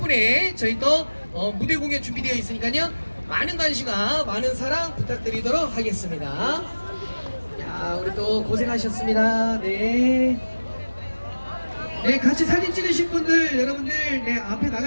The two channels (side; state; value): both; inverted; correlation -1.00